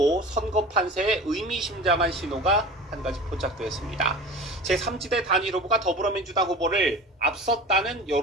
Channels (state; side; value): normal; both; correlation 0.36